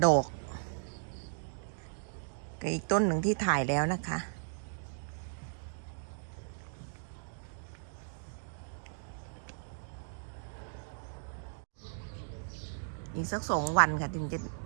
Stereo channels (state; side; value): silent; left; digital silence